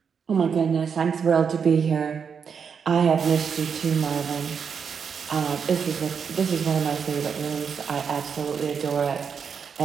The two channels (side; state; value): left; quieter; 6.6 dB